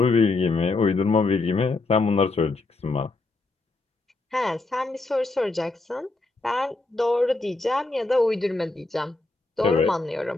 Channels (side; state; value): right; quieter; 3.3 dB